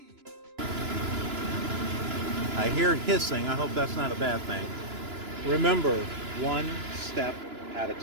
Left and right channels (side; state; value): left; late; 2.9 ms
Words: I hear hissing. I hope that's not a bad thing. Remember, one step at a